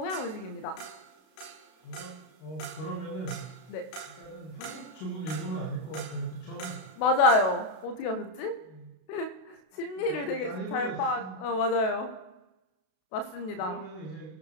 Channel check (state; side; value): late; right; 32 ms